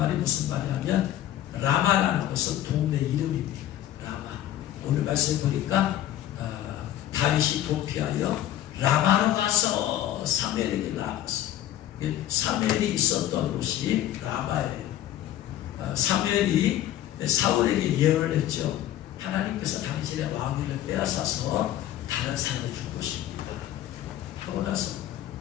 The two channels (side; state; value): right; quieter; 12.5 dB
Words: 무슨 말이냐면 라마라는 것은 동네 이름입니다. 라마. 오늘 말씀 보니까 다윗이 도피하여 라마로 가서 사무엘에게 나아갔어요. 사무엘이 있었던 곳이 라마예요. 사무엘이 사울에게 예언을 했죠. 하나님께서 당신의 왕위를 빼앗아서 다른 사람을 줄 것입니다 하고 나서